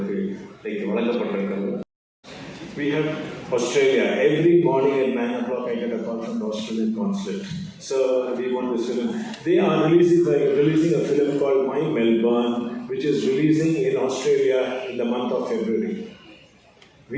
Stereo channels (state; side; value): identical; both; correlation 1.00